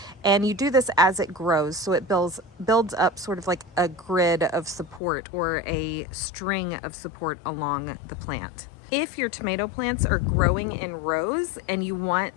And you do this as it grows, so it builds up sort of like a grid of support or a string of support along the plant. If your tomato plants are growing in rows and you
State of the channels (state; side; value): drops out; right; at 5.0 s